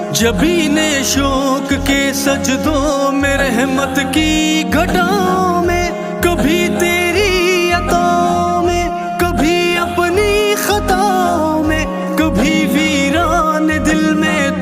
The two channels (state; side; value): identical; both; correlation 1.00